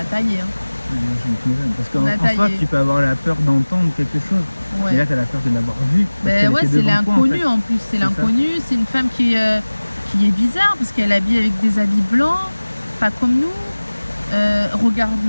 taillé. Parce qu'en soi, tu peux avoir la peur d'entendre quelque chose, ouais. Et là tu as la peur de l'avoir vu. Ben ouais, c'est l'inconnu en plus, c'est l'inconnu, c'est une femme qui est bizarre parce qu'elle habille avec des habits blancs, pas comme nous, regard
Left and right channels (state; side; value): inverted; both; correlation -1.00